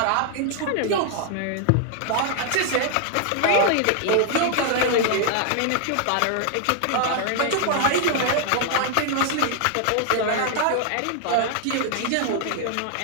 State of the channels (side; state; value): both; different; correlation 0.00